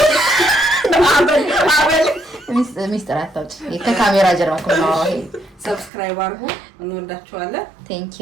ሚስጥር አታውጪ፣ ከካሜራ ጀርባ እኮ ነው። ሰብስክራይብ አድርጉ። እንወዳቸዋለን። ቴንክ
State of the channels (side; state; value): left; drops out; at 5.9 s